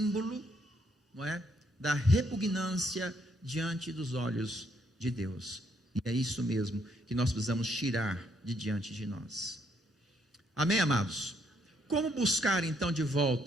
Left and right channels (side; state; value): both; normal; correlation 0.72